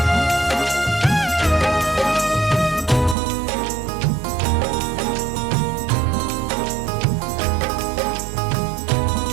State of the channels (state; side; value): drops out; left; at 3.2 s